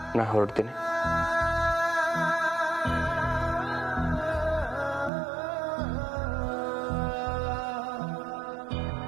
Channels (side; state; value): left; drops out; at 5.1 s